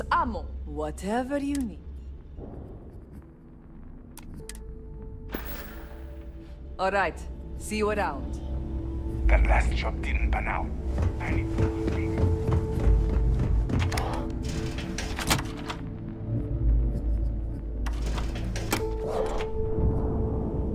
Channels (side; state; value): both; identical; correlation 1.00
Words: ammo, whatever you need. All right, see you around. That last job didn't pan out. I need to think.